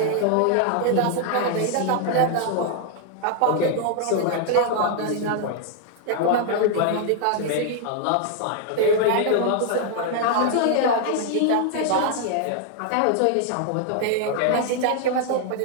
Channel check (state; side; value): different; both; correlation 0.00